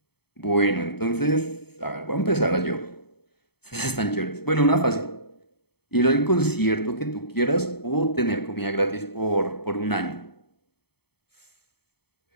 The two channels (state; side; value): late; right; 0.97 ms